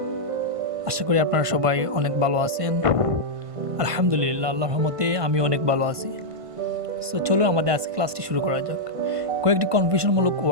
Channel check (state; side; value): late; left; 1.5 ms